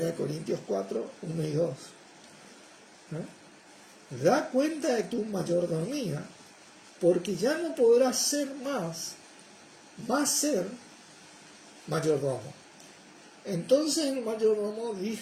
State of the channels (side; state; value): both; identical; correlation 1.00